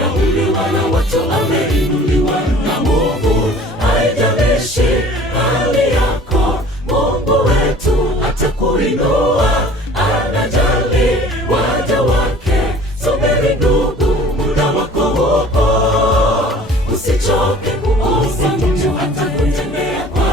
na watu ameinuliwa na Mungu. Haijalishi hali yako, Mungu wetu atakuinua. Anajali waja wake. Subiri ndugu, muda wako hupo. Usichoke kuomba, Mungu atakutendea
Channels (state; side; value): normal; both; correlation 0.48